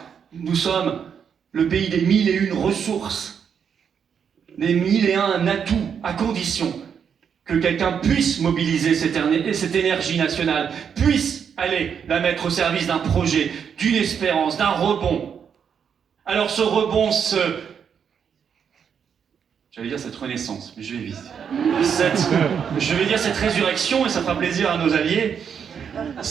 Nous sommes le pays des 1001 ressources, des 1001 atouts, à condition que quelqu'un puisse mobiliser cette énergie nationale, puisse aller la mettre au service d'un projet, d'une espérance, d'un rebond. Alors ce rebond J'allais dire cette renaissance, mais je vais vite. Je vais dire cette résurrection, et ça fera plaisir à nos alliés.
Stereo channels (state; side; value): quieter; left; 7.4 dB